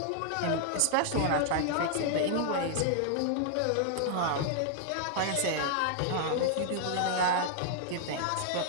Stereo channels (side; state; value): both; different; correlation -0.01